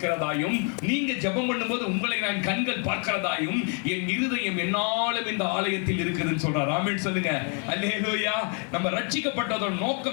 நீங்க ஜெபம் பண்ணும்போது உங்களை நான் கண்கள் பார்க்கிறதாயும் என் இருதயம் என்னாலும் இந்த ஆலயத்தில் இருக்குதுன்னு சொல்றார். ஆமென் சொல்லுங்க. அல்லேலூயா. நம்ம ரட்சிக்கப்பட்டதோட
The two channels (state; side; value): quieter; right; 39.6 dB